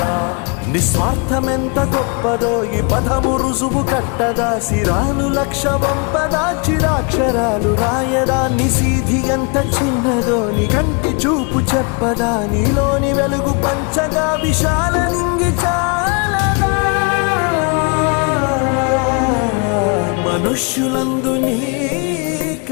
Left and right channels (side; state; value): right; quieter; 33.8 dB